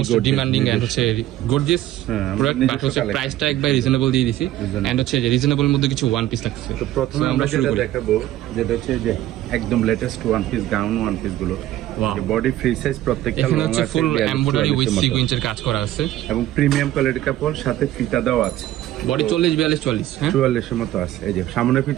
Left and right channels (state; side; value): quieter; left; 14.0 dB